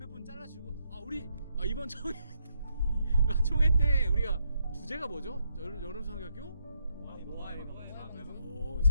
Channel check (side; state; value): both; inverted; correlation -0.77